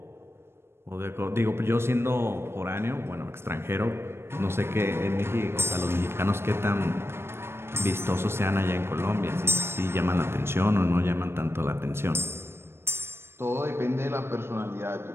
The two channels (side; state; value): left; late; 0.12 ms